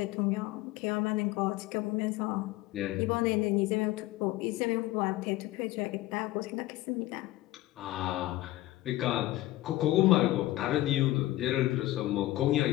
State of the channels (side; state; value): right; quieter; 16.7 dB